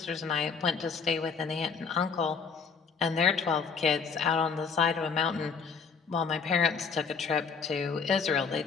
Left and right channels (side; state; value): right; quieter; 5.5 dB